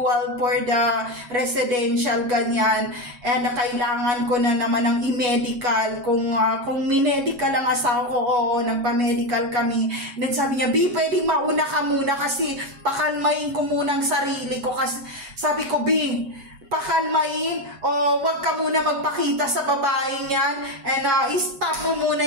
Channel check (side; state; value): left; late; 7.3 ms